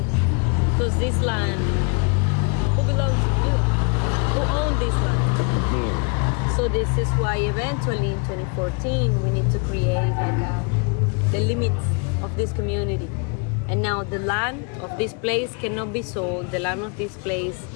Because this land, who belongs to you? Who owns this land? So this is why eventually in 2014 we need to create the limits of this community. And now the land of this place cannot be sold. The land of this place,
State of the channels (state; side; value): quieter; right; 35.1 dB